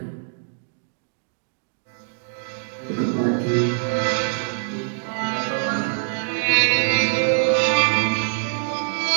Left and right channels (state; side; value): silent; left; digital silence